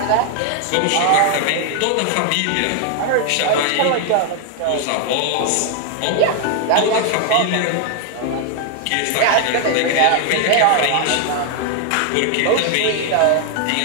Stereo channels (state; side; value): different; both; correlation 0.00